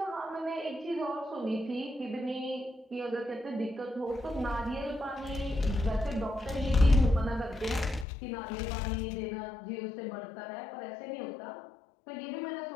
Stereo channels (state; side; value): drops out; right; at 8.1 s